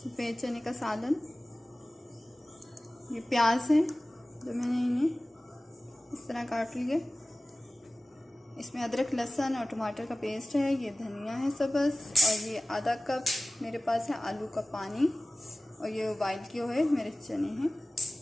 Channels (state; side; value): normal; both; correlation 0.97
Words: चने का सालन। ये प्याज है जो मैंने इन्हें इस तरह काट लिए। इसमें अदरक, लहसुन और टमाटर का पेस्ट है। ये धनिया है सब्ज़, और ये आधा कप मेरे पास है आलू का पानी, और ये बॉइल किए हुए मेरे चने हैं।